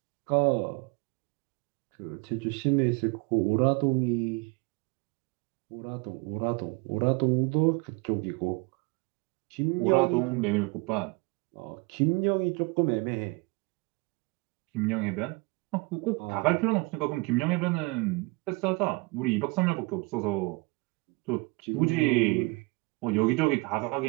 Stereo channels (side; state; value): left; quieter; 26.8 dB